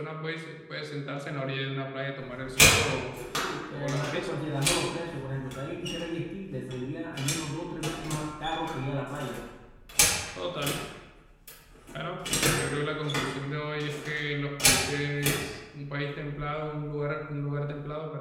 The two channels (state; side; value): identical; both; correlation 1.00